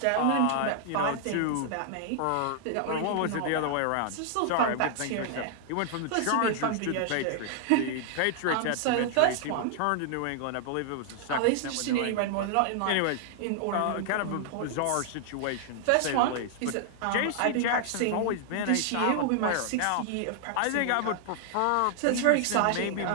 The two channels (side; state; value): both; different; correlation 0.00